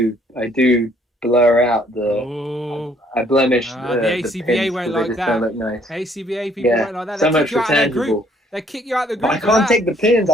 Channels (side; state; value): both; normal; correlation 0.63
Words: blur out I blemish the ACBA won't like that. Look nice. ACBA people won't like that. So much for tangible. They kick you out of the group. But I can't take the pins.